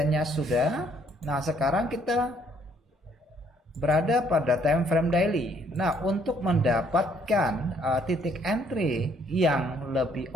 sudah. Nah, sekarang kita berada pada time frame daily. Nah, untuk mendapatkan titik entry yang lebih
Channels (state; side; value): normal; both; correlation 0.65